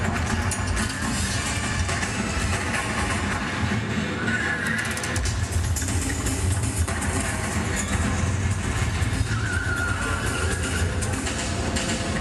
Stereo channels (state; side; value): identical; both; correlation 1.00